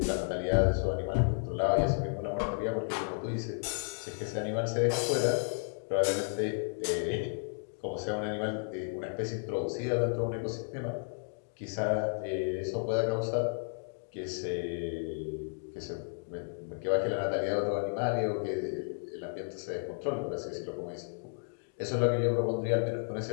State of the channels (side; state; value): right; silent; digital silence